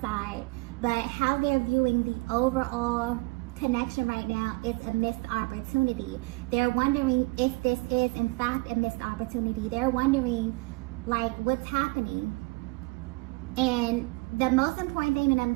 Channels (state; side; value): quieter; left; 26.8 dB